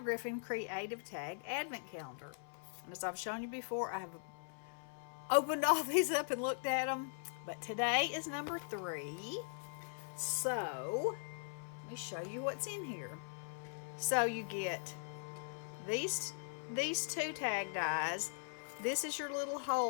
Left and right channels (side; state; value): right; silent; 51 dB below the other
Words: Creative Tag Advent Calendar. And as I've shown you before, I have opened all these up and looked at them, but today is number 3. So, let me show you what's in here. So you get these two tag dies. This is your little